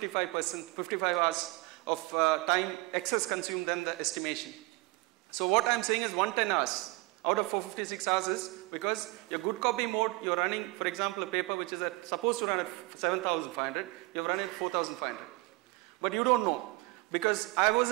hours of time excess consumed than the estimation. So what I am saying is 110 hours out of 456 hours is because your good copy mode, you're running, for example, a paper which is supposed to run at 7,500, you're running at 4,500. But you don't know. Because I was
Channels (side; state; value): left; quieter; 23.9 dB